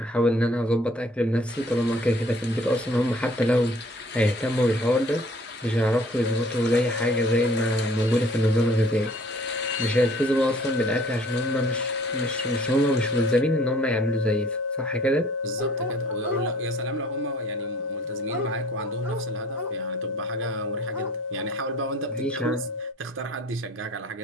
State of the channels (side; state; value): both; normal; correlation 0.54